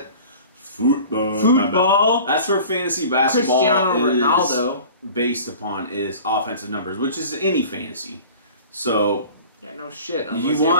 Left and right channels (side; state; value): both; inverted; correlation -0.43